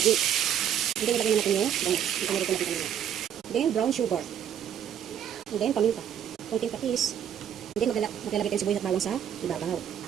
Then, nilagay na natin yung bangus. Ito na rin natin kanina. Then, brown sugar. And then, paminta. Konting patis. And then, maglalagay tayo sibuyas at bawang sa ibabaw.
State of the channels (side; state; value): left; quieter; 9.5 dB